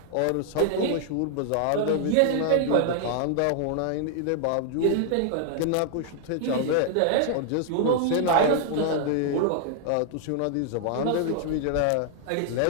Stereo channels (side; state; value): both; different; correlation 0.00